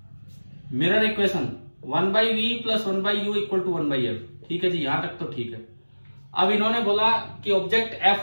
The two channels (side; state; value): both; inverted; correlation -1.00